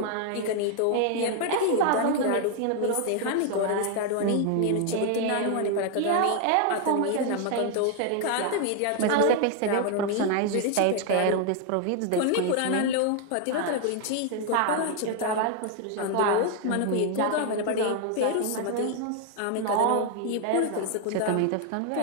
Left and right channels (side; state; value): both; different; correlation 0.00